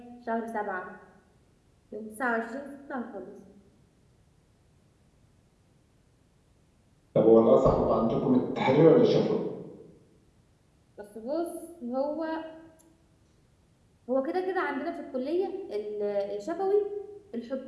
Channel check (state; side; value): identical; both; correlation 1.00